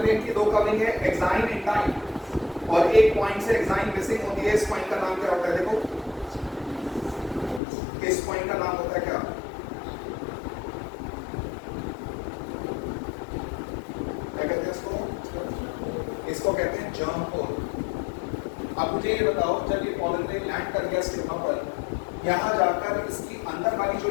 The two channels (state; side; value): drops out; right; at 7.6 s